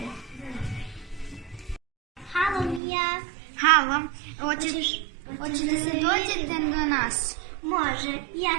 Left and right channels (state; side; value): drops out; left; at 2.8 s